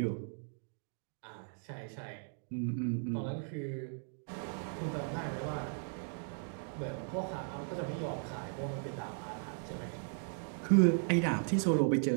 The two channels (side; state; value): left; silent; 53 dB below the other